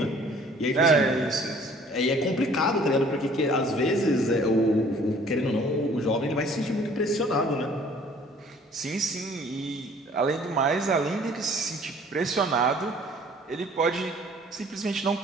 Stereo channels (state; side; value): normal; both; correlation 0.54